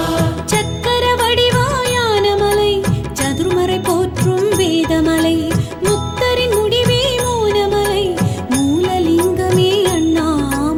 சக்கர வடிவாயான மலை சதுர்மறை போற்றும் வேதமலை முக்தரின் முடிவே மோனமலை மூலலிங்கமே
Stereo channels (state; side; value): identical; both; correlation 1.00